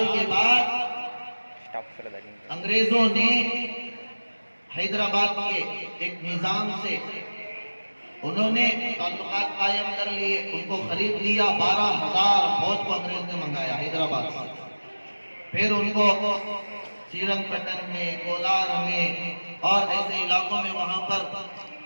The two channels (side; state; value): both; inverted; correlation -1.00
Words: کے بعد انگریزوں نے حیدرآباد کے ایک نظام سے انہوں نے تعلقات قائم کر لیے، ان کو خرید لیا۔ 12,000 فوج کو انگریز نے منگایا حیدرآباد سے۔ پھر ان کو سیرنگ پٹن میں، کولار میں اور ایسے علاقوں میں وہاں پر